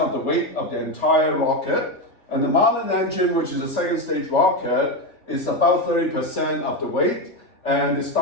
of the weight of the entire rocket. And the Merlin engine, which is a second stage rocket, is about 30% of the weight, and the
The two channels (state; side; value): late; right; 3.4 ms